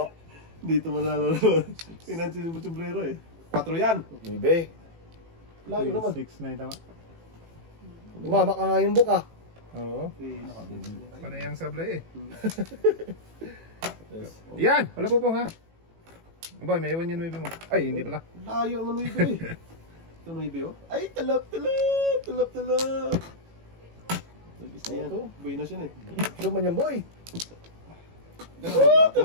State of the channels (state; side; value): late; left; 18 ms